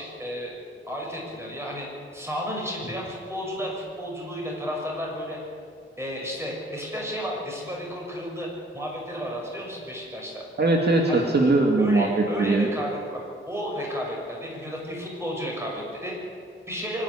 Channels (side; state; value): both; normal; correlation 0.57